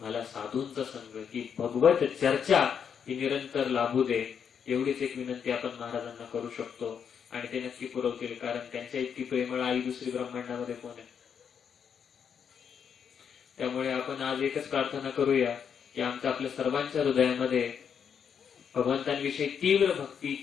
साधूंचा संग, की भगवत चर्चा ही निरंतर लाभू दे. एवढीच एक विनंती आपण महाराजांना करू शकतो. आणि ते नक्की पुरवतील. कारण त्यांच्या इतकी प्रेमळ आई दुसरी ब्रह्मांडामध्ये कोण आहे? त्यामुळे आपण आज एकच प्रार्थना करूया की आमच्या आपल्या सर्वांच्या हृदयामध्ये भगवंतांविषयी तीव्र भक्ती,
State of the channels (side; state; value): right; quieter; 7.4 dB